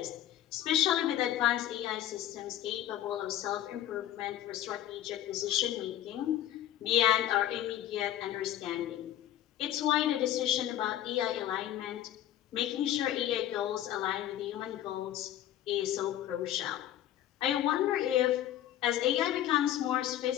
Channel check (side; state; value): right; quieter; 12.2 dB